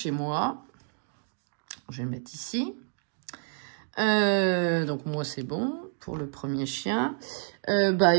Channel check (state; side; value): silent; left; digital silence